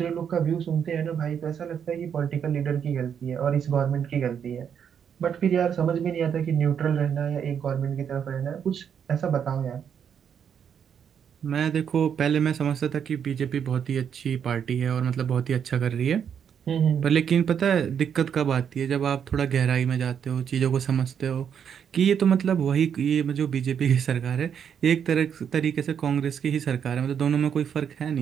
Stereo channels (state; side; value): quieter; left; 7.9 dB